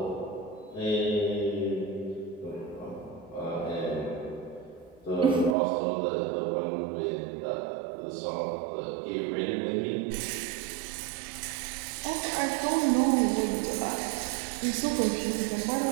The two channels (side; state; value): left; drops out; at 5.6 s